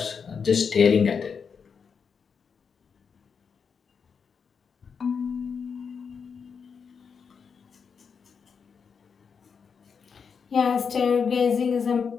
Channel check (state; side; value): quieter; right; 6.1 dB